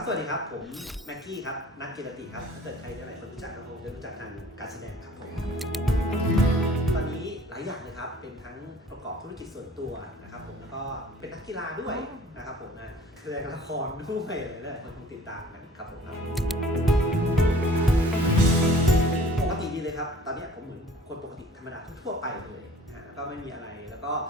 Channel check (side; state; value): both; normal; correlation 0.50